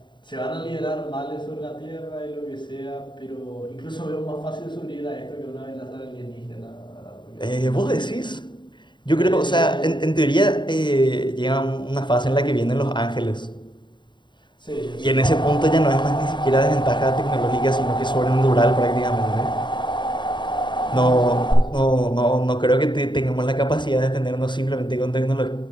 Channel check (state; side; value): late; right; 0.23 ms